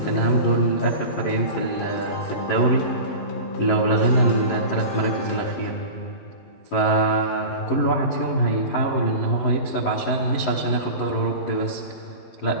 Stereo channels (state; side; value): late; right; 11 ms